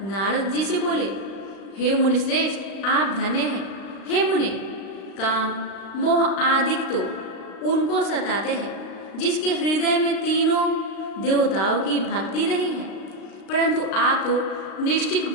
नारद जी से बोले, हे मुनिश्रेष्ठ, आप धन्य हैं। हे मुनि, काम मोह आदिक तो उनको सताते हैं जिसके हृदय में तीनों देवताओं की भक्ति नहीं है, परंतु आप तो निष्ठिक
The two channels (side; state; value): right; late; 35 ms